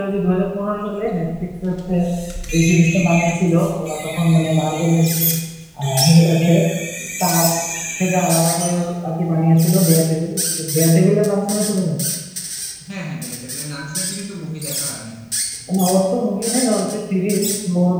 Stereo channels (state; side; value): identical; both; correlation 1.00